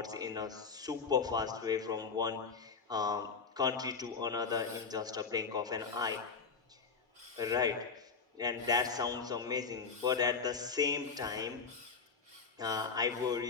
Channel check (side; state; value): right; quieter; 5.2 dB